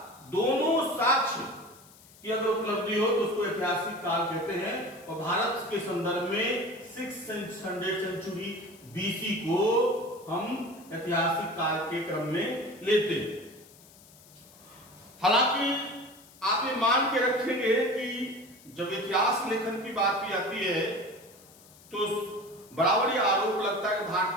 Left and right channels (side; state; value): left; noise; hiss, 24 dB below the sound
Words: दोनों साक्ष्य की अगर उपलब्धि हो तो उसको ऐतिहासिक काल कहते हैं। और भारत के संदर्भ में 600 सेंचुरी बीसी को हम ऐतिहासिक काल के क्रम में लेते हैं। हालांकि आप ये मान के रखेंगे कि जब इतिहास लेखन की बात भी आती है तो बराबर ही आरोप लगता है कि